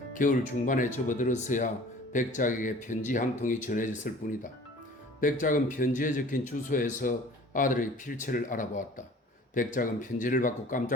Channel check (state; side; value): normal; both; correlation 0.47